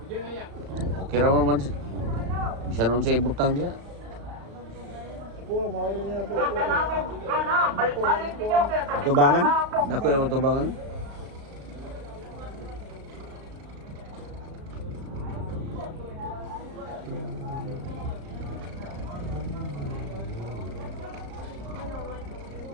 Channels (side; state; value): left; late; 35 ms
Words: Okay raman man siya. Bisa nun sa ibutang dia. Ako mawala niya po. Atubangan? Dako yung atubangan?